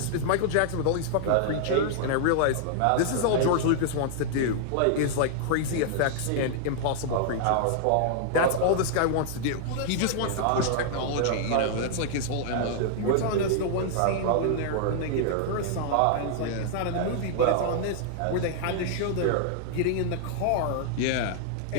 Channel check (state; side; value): different; both; correlation -0.01